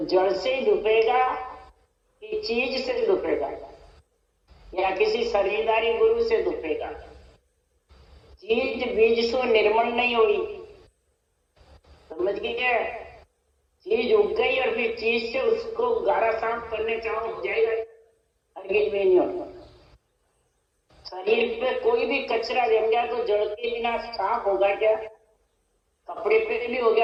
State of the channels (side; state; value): both; identical; correlation 1.00